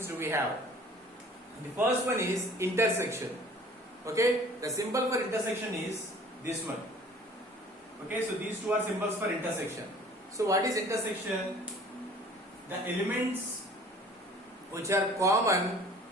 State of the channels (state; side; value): normal; both; correlation 0.50